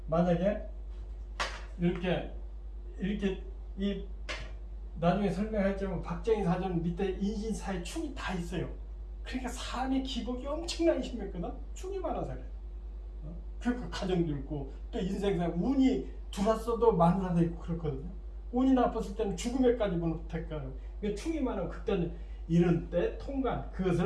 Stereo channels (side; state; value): both; identical; correlation 1.00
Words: 만약에 이렇게 이 나중에 설명할지만 박정희 사전 밑에 인신사의 충이 다 있어요. 그러니까 삶의 기복이 엄청나게 심했거든. 충이 많아서 그래요. 그러니까 가정도 있고 또 인생상 운이 들어왔어도 마누라도 있고 그렇거든요. 운이 나빴을 때는 죽음에까지 못할까요. 충이 많으면 그때는 이런 때 통관